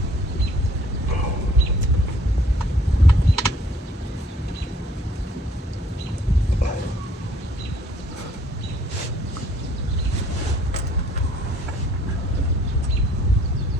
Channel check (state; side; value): normal; both; correlation 0.59